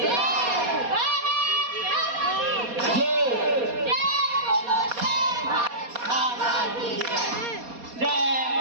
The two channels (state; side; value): late; left; 4.2 ms